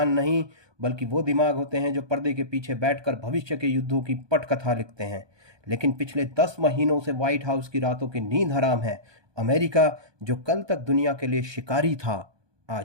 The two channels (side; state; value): left; late; 1.2 ms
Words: नहीं, बल्कि वो दिमाग होते हैं जो पर्दे के पीछे बैठकर भविष्य के युद्धों की पटकथा लिखते हैं। लेकिन पिछले 10 महीनों से व्हाइट हाउस की रातों की नींद हराम है। अमेरिका, जो कल तक दुनिया के लिए शिकारी था,